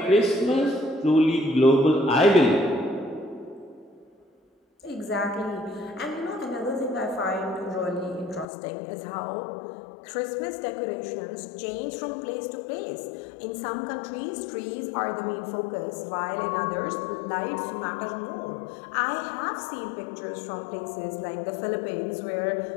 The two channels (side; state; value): right; drops out; at 8.5 s